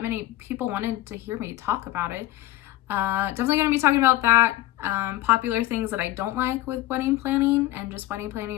many people wanted to hear me talk about it. Definitely going to be talking about that. Popular things that I don't like with wedding planning and just wedding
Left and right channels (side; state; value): right; quieter; 15.6 dB